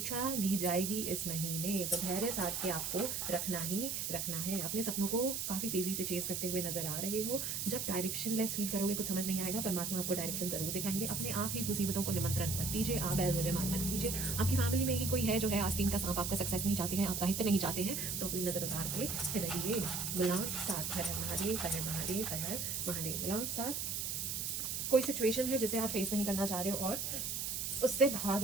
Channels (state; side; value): noise; right; hiss, 2 dB below the sound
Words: ली जाएगी इस महीने, तो धैर्य साथ के आपको रखना ही रखना है। अपने सपनों को काफ़ी तेज़ी से चेस करते हुए नजर आ रहे हो, जब डायरेक्शन लेस फील करोगे, कुछ समझ नहीं आएगा, परमात्मा आपको डायरेक्शन जरूर दिखाएंगे। अपने आप ही मुसीबतों को निमंत्रण मत दीजिए, आप बैल मुझे मान मत कीजिए। आपकी फैमिली में ही कोई है जो है आस्तीन का सांप, आपका सक्सेस नहीं चाहते हैं, आपका हित नहीं चाहते हैं, तो अपनी नजर उतार के रहिए। मूलांक 7, हर हर महादेव, हर हर महादेव, हर हर महादेव। मूलांक 7, कोई सिचुएशन है जिसे आप फेस नहीं करना चाह रहे हो और उससे भाग